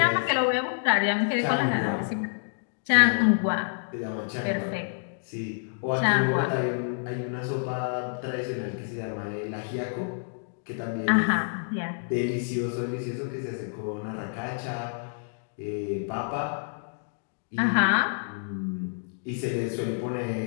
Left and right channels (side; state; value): right; silent; digital silence